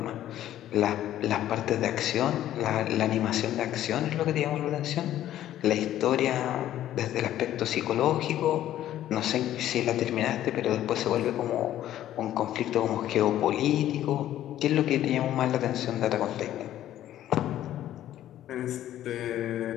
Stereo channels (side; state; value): right; quieter; 12.5 dB